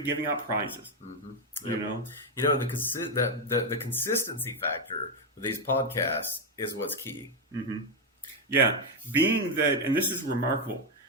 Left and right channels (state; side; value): normal; both; correlation 0.05